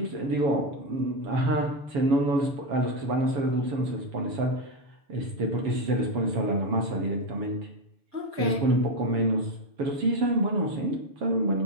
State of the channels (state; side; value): late; left; 7.2 ms